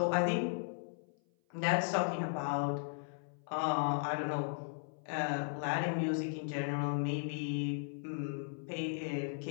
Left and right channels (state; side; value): silent; right; 53 dB below the other